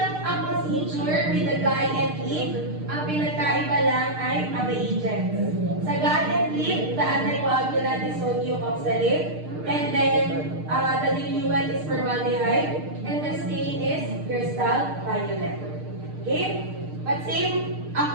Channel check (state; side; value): late; left; 6.6 ms